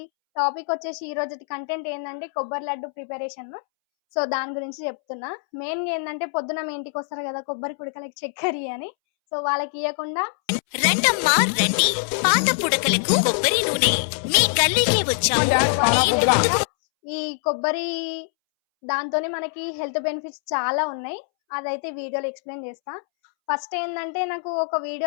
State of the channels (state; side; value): silent; right; 63 dB below the other